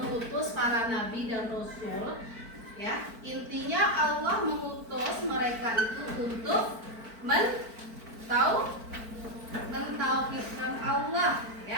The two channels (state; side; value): late; left; 4.5 ms